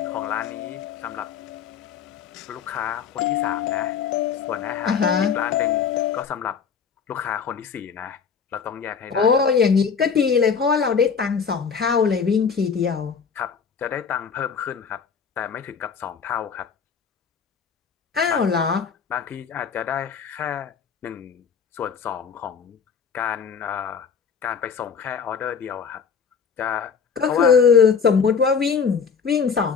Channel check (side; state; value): right; quieter; 6.3 dB